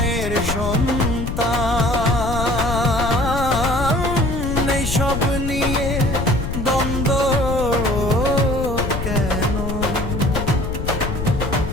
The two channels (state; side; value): noise; left; rumble, 4 dB below the sound